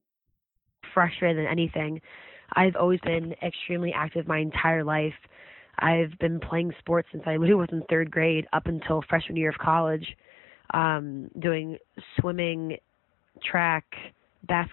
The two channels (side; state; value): right; drops out; at 10.1 s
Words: Frustrated than anything. I've always been extremely active my entire life. I've been playing sports since I literally was in third grade up until freshman year of college, doing swimming, track,